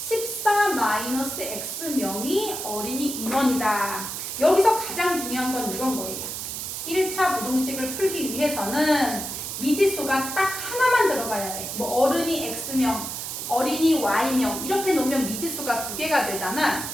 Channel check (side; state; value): right; noise; hiss, 6 dB below the sound